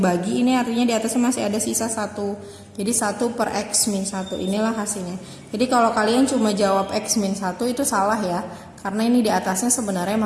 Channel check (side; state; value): both; identical; correlation 1.00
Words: Ini artinya di atasnya masih ada sisa 1. Jadi 1 per X min 1. Inilah hasilnya. Jadi kalau kalian cuma jawab X min 1 itu salah ya. Karena ini di atasnya sebenarnya